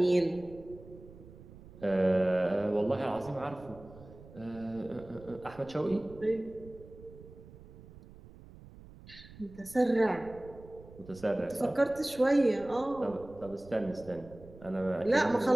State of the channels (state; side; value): noise; right; rumble, 19 dB below the sound